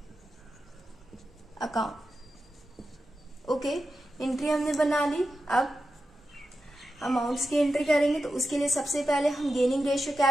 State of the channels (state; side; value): normal; both; correlation 0.90